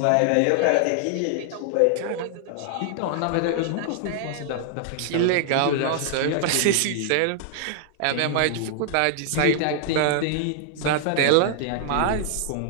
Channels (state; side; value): different; both; correlation 0.00